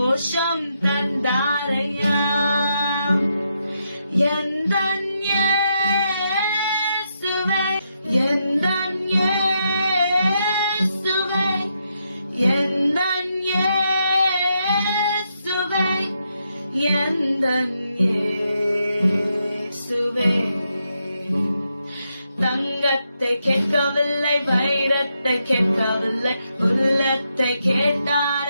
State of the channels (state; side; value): inverted; both; correlation -0.81